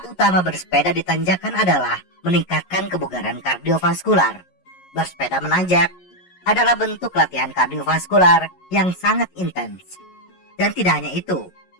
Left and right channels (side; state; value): right; late; 11 ms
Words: utama bersepeda di tanjakan adalah meningkatkan kebugaran kardiovaskular. Bersepeda menanjak adalah bentuk latihan kardiovaskular yang sangat intens. Dan tidak hanya itu,